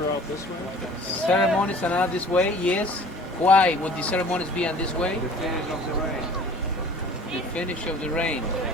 out this way? Ceremonies are not this way, yes. Why would the ceremonies be on this way? The finish of the rain. The finish of the rain.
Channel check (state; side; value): normal; both; correlation 0.47